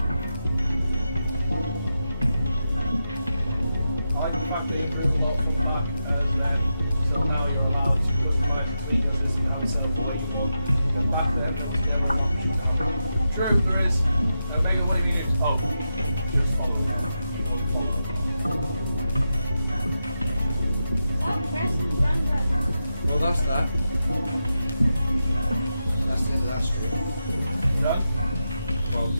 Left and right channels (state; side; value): inverted; both; correlation -0.88